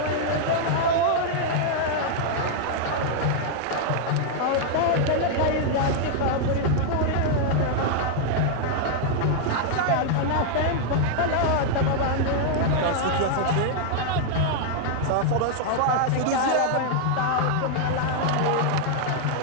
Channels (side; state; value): both; different; correlation 0.00